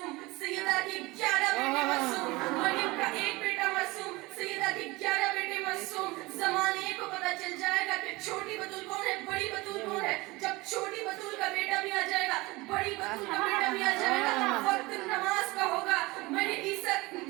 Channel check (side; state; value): left; quieter; 22.3 dB